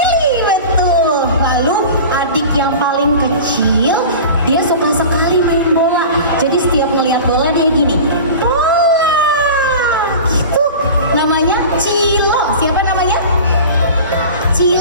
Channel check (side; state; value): both; inverted; correlation -0.35